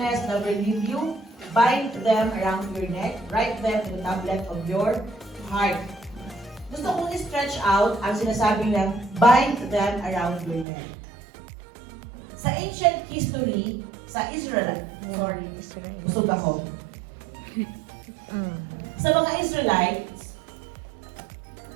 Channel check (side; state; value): left; drops out; at 10.7 s